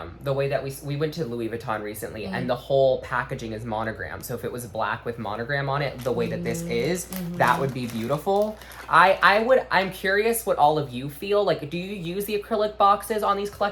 The way that we went to Louis Vuitton recently, and the whole packaging is monogram. So if it was black with monogram on it, the way that this is, that would be beautiful. I'm curious what all of you feel. Like, do you use the acrylic boxes on these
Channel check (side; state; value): both; identical; correlation 1.00